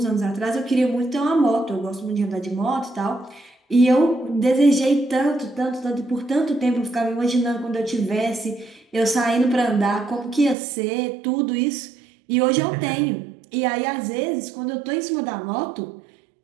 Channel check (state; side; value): drops out; left; at 10.6 s